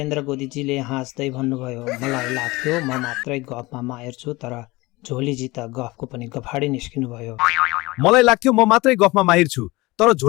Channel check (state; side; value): quieter; right; 21.8 dB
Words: गोदीजीले हाँस्दै भन्नुभयो, मलाई लाग्थ्यो म मात्रै गफमा माहिर छु, तर झोलीजी त गफको पनि गफाडी निस्किनु भयो। मलाई लाग्थ्यो म मात्रै गफमा माहिर छु, तर